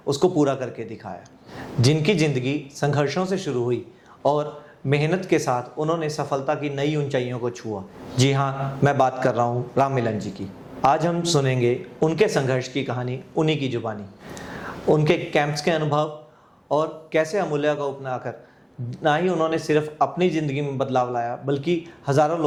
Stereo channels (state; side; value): identical; both; correlation 1.00